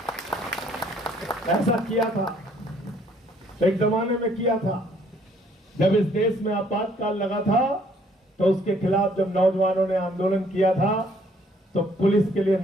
ऐसा किया था, एक जमाने में किया था, जब इस देश में आपातकाल लगा था, तो उसके खिलाफ जब नौजवानों ने आंदोलन किया था तो पुलिस के लिए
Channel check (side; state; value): both; normal; correlation 0.63